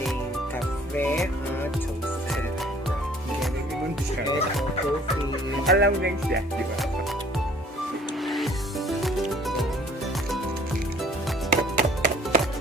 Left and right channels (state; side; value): normal; both; correlation 0.56